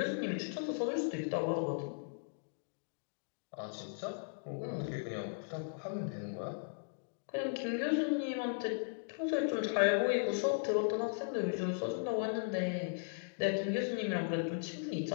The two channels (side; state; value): right; silent; digital silence